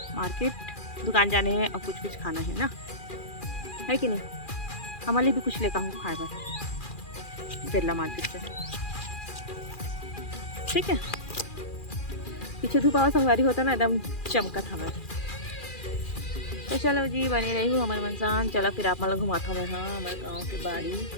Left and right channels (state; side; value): late; right; 2.4 ms